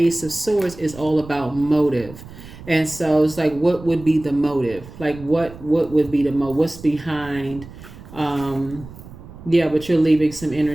of Swords, is all about motive. And so it's like, what would be the motive? Like, what would be the motive? What's behind? Yeah, but you're leaving some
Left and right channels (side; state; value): right; noise; rumble, 16 dB below the sound